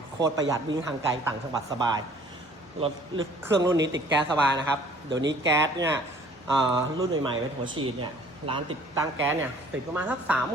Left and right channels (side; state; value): both; normal; correlation 0.54